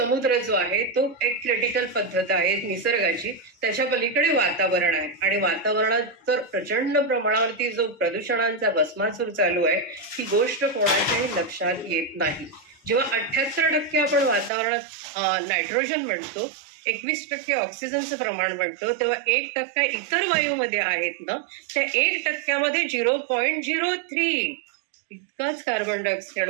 जो आहे तो एक क्रिटिकल पद्धत आहे निसर्गाची. त्याच्या पलीकडे वातावरण आहे आणि वातावरणात तर प्रचंड प्रमाणावरती जो प्रदूषणांचा भस्मासूर चालू आहे ही गोष्ट कोणाच्याही लक्षात येत नाही. जेव्हा 78% आपण वातावरणात नायट्रोजन म्हणतो, 21% ऑक्सिजनचं प्रमाण म्हणतो, तेव्हा 1% इतर वायूमध्ये आहेत ना, त्या 1%मध्ये 0.03 इतकाच कार्बन डायऑक्साईड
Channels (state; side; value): drops out; left; at 14.5 s